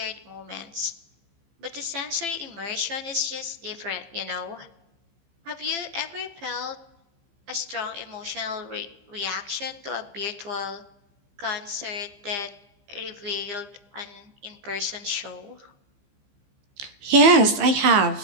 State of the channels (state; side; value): late; left; 15 ms